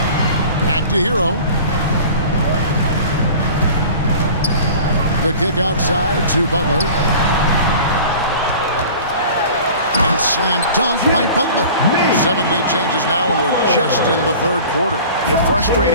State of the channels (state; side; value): inverted; both; correlation -0.42